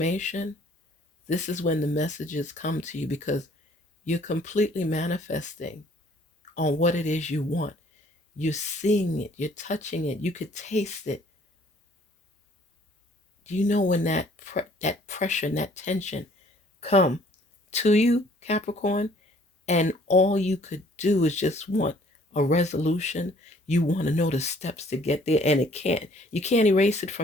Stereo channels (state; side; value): normal; both; correlation 0.58